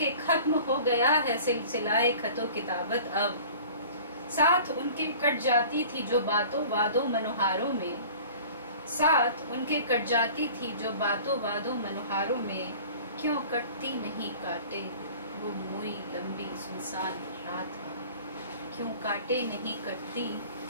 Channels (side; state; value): both; inverted; correlation -0.44